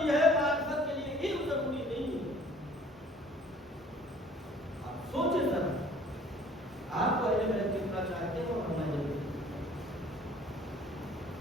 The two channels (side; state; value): both; normal; correlation 0.54